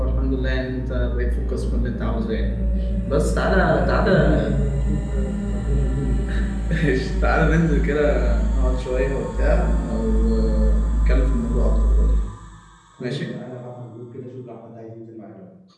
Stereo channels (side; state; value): both; identical; correlation 1.00